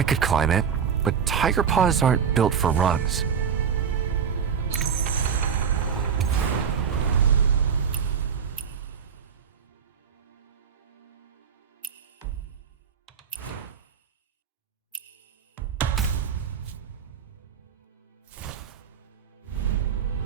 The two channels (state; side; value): quieter; left; 7.1 dB